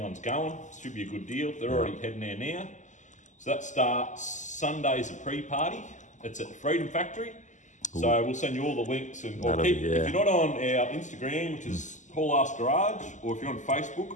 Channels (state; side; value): late; right; 0.35 ms